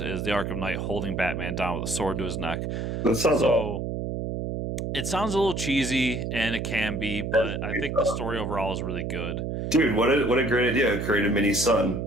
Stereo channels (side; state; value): right; noise; hum, 3 dB below the sound